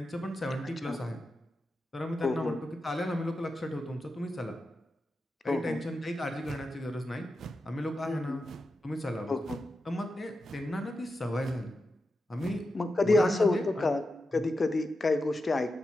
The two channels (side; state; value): both; normal; correlation 0.89